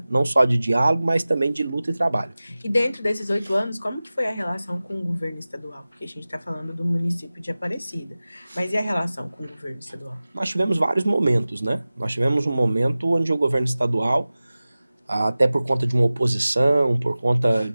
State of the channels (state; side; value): inverted; both; correlation -0.97